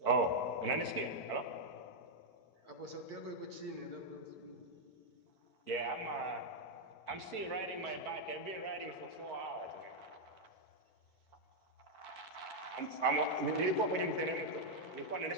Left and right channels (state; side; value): late; right; 4.5 ms